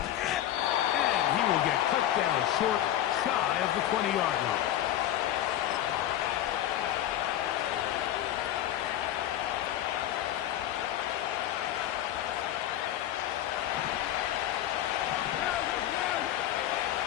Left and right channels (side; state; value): right; quieter; 12.3 dB